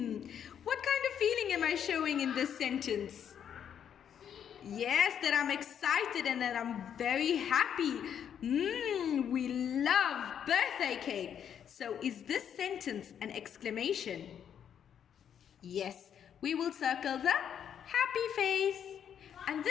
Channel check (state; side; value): quieter; right; 8.7 dB